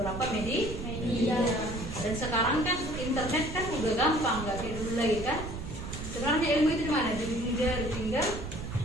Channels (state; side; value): noise; right; rumble, 8 dB below the sound